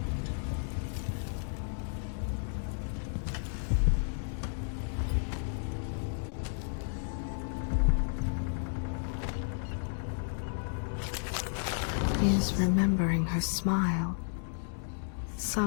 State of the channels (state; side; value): silent; right; digital silence